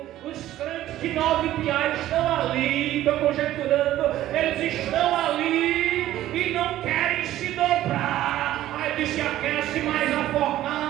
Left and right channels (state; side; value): quieter; left; 13.7 dB